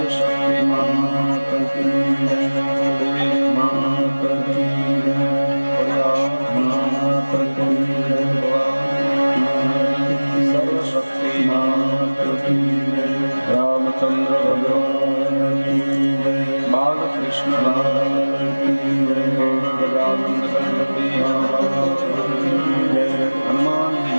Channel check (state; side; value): inverted; both; correlation -1.00